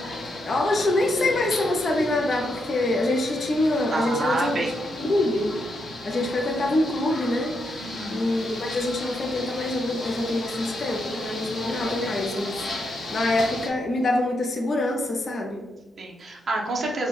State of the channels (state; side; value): normal; both; correlation 0.81